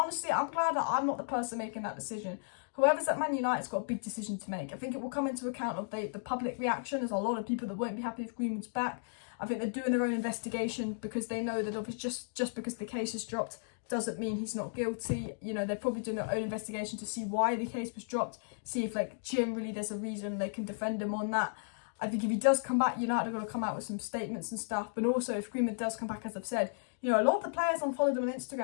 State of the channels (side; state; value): right; silent; digital silence